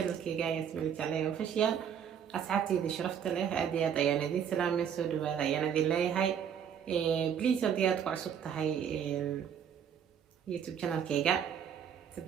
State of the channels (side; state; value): left; quieter; 8.3 dB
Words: كيجا ياسمين الجعلي official أصحابتي دي شرفت له أديات أيانا دي سلام مسود وهذا أيانا دي لي هاي بليز أديات وعصبت هاي يوتيوب channel كيجا